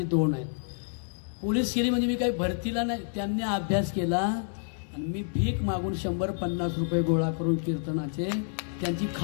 2 आहेत. पोलीस केली म्हणजे मी काही भरतीला नाही, त्यांनी अभ्यास केला आणि मी भीक मागून 100-50 रुपये गोळा करून कीर्तनाचे त्यांची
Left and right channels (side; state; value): right; silent; digital silence